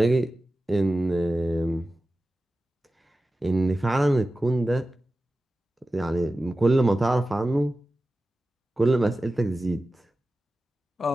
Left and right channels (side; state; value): both; normal; correlation 0.95